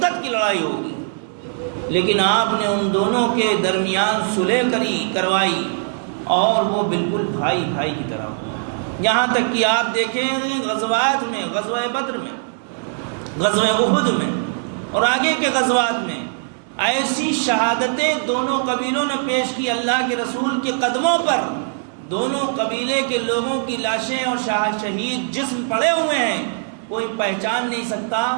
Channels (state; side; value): silent; left; digital silence